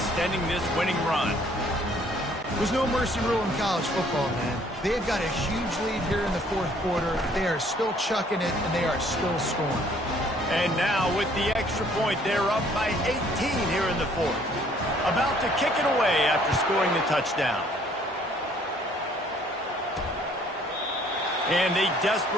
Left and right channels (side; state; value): both; normal; correlation 0.60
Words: this winning run. There's no mercy rule in college football, man. They've got a huge lead here in the 4th quarter. They are still chucking it, and they are still scoring. And now with the extra point, they're up by 18 here in the 4th. About to kick it away after scoring the touchdown. And they